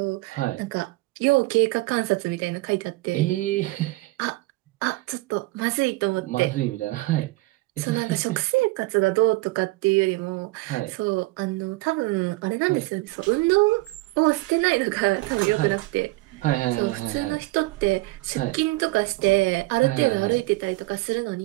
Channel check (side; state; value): left; quieter; 21.7 dB